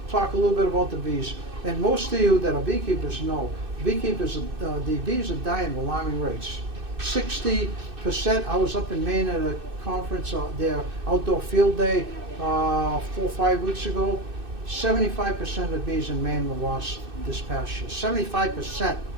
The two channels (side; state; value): left; late; 2.6 ms